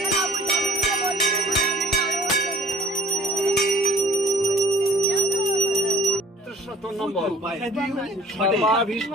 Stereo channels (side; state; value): both; normal; correlation 0.50